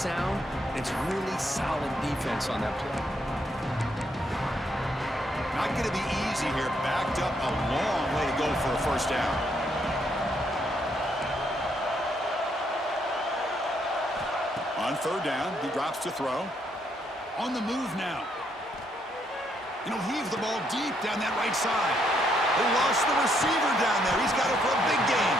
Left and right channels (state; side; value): normal; both; correlation 0.74